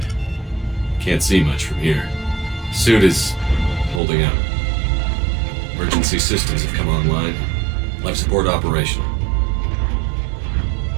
Can't see much from here. Suit is holding out. Emergency systems have come online. Life support operational.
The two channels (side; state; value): left; drops out; at 4.0 s